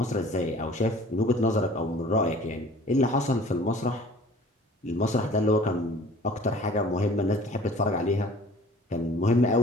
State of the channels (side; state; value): both; normal; correlation 0.48